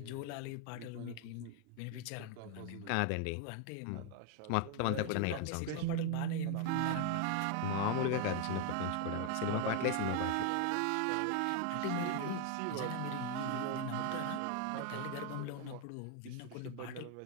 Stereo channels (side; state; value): both; different; correlation 0.01